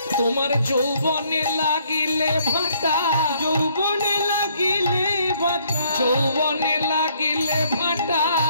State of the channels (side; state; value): both; inverted; correlation -0.65